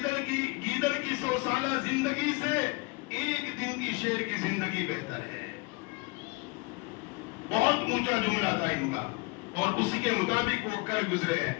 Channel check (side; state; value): right; quieter; 27.3 dB